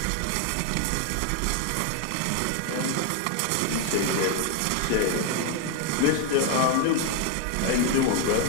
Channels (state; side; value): different; both; correlation 0.01